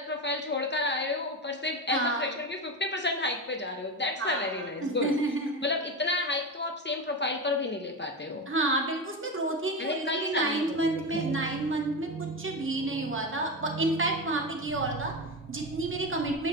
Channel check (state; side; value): normal; both; correlation 0.19